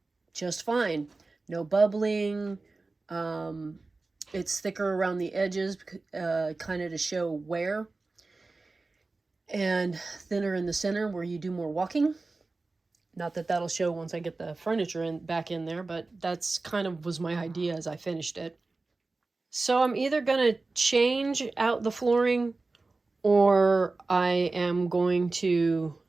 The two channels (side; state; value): left; quieter; 3.6 dB